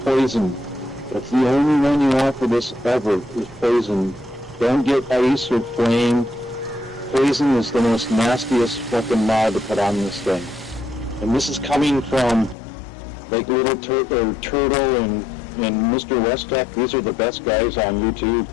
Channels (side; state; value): right; drops out; at 12.6 s